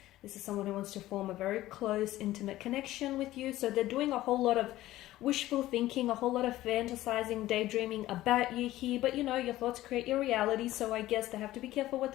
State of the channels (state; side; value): quieter; right; 15.6 dB